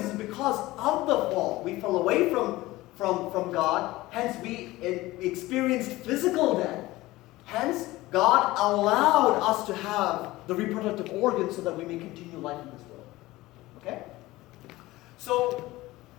is because of the fall. We fell away from God, hence we experienced physical death. Hence, God allowed us to have the reproductive organs so that we may continue life in this world. Okay? So,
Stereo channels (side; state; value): right; quieter; 18.6 dB